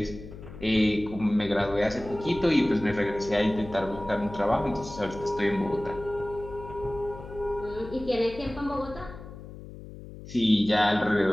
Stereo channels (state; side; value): noise; left; hum, 14 dB below the sound